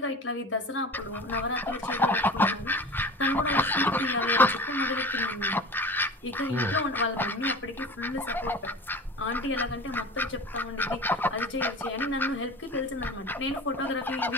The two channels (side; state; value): both; normal; correlation 0.37